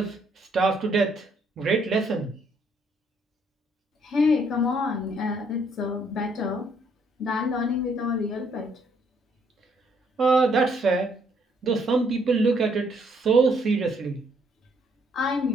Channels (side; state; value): both; normal; correlation 0.68